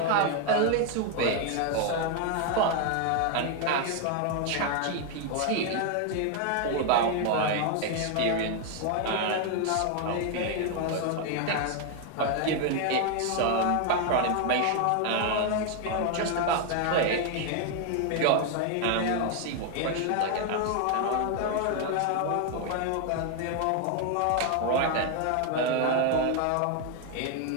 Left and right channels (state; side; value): different; both; correlation 0.01